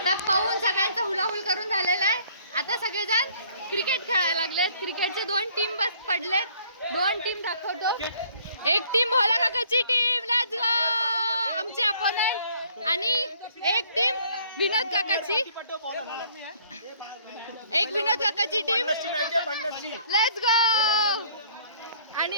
पाहून सगळ्यांचा हुलाहुल करून झालेला आहे. आता सगळेजण क्रिकेट खेळायला लागलेत. क्रिकेटचे 2 टीम बस पडलेत. 2 टीम दाखवतो. एक टीम भोला काकाची टीम, लेट्स गो, आमचे अपोनंट. आणि एक टीम विनोद काकाची, एक विनोद काकाची टीम, लेट्स गो.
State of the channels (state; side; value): inverted; both; correlation -0.60